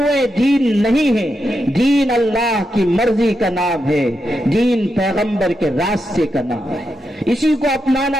دین نہیں ہیں۔ دین اللہ کی مرضی کا نام ہے، دین پیغمبر کے راستے کا نام ہے، اسی کو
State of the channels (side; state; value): both; normal; correlation 0.86